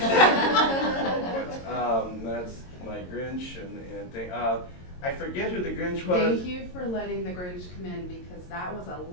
That's my Grinch and thing. I forget who the Grinch was. Thank you for letting the Grinch come in, because that was a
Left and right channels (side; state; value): right; late; 22 ms